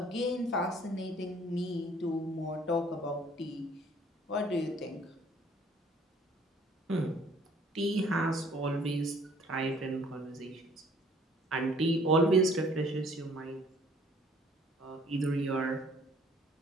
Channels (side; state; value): both; normal; correlation 0.57